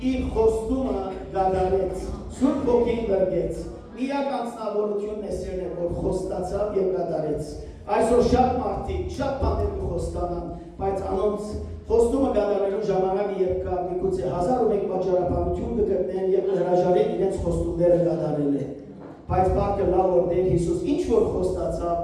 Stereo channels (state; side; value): identical; both; correlation 1.00